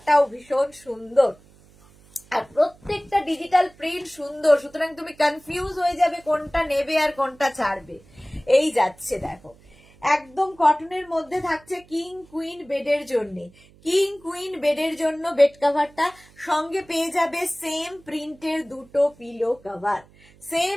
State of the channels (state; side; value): noise; right; hum, 27 dB below the sound